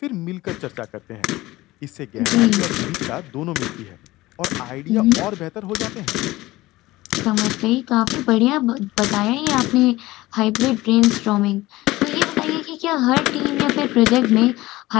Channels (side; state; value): right; quieter; 18.5 dB